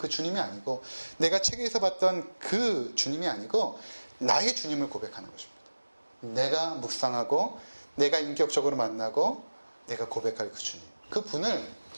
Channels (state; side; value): inverted; both; correlation -1.00